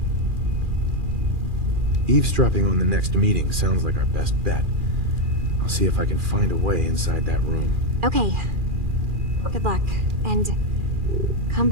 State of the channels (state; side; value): late; left; 2.4 ms